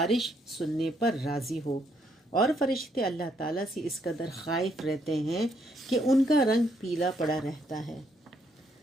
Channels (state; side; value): normal; both; correlation 0.73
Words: سننے پر راضی ہو، اور فرشتے اللہ تعالیٰ سے اس قدر خائف رہتے ہیں کہ ان کا رنگ پیلا پڑا رہتا ہے۔